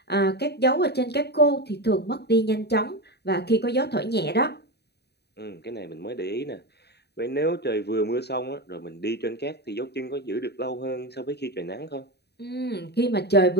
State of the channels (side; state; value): right; late; 0.48 ms